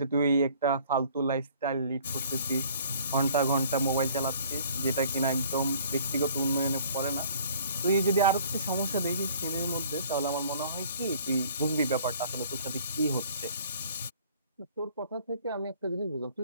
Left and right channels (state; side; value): inverted; both; correlation -0.54